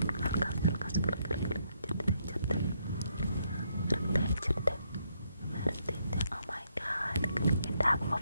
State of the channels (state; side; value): inverted; both; correlation -0.75